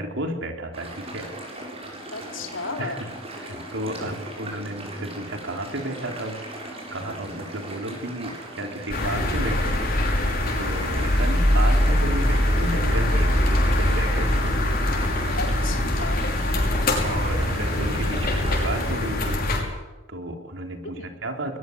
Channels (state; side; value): normal; both; correlation 0.66